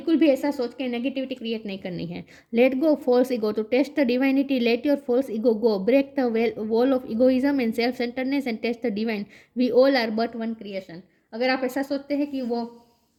भी ऐसा सोच के नेगेटिविटी क्रिएट नहीं करनी है। Let go false ego to taste the divinity, let your false ego go, break the wall of egoism and self centreness and taste the divine. We all are but one creation. अगर आप ऐसा सोचते हैं कि वो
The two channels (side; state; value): both; identical; correlation 1.00